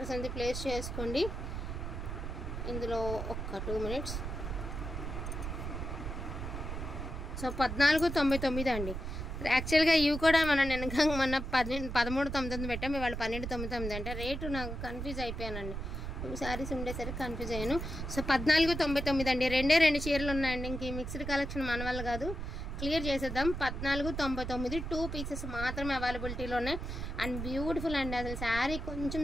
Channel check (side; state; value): right; noise; rumble, 5 dB below the sound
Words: అనేది ప్లేస్ చేసుకోండి. ఇందులో ఒక్క 2 minutes. సో 1499 అండి. యాక్చువల్గా ఇవి కూడా మనం మొన్న 1399 పెట్టాం. ఇవాళ 1299 అంటే రేటు నాకు కన్ఫ్యూజ్ అయిపోయానండి. 2 శారీస్ ఉండేసరికి కన్ఫ్యూజ్ అయ్యాను. సో 1499 అండి. 2 చీరలు ఉన్నాయండి. ఇంక ఈ మిక్స్డ్ కలెక్షన్ మన వల్ల కాదు, క్లియర్ చేసేద్దాం. 1499 2 pieces మాత్రమే అవైలబిలిటీలో ఉన్నాయి. అండ్ బ్యూటిఫుల్ అండి. అసలు శారీ కొంచెం